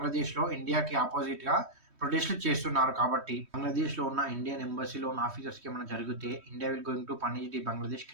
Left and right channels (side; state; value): left; late; 3.2 ms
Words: ఇండియాకి అపోజిట్‌గా ప్రొటెస్ట్‌లు చేస్తున్నారు కాబట్టి. బంగ్లాదేశ్‌లో ఉన్న ఇండియన్ ఎంబసీలో ఉన్న ఆఫీసర్స్‌కి ఏమైనా జరిగితే India will going to punish the Bangladesh